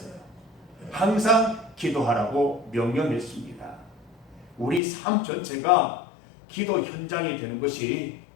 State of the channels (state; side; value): drops out; right; at 4.8 s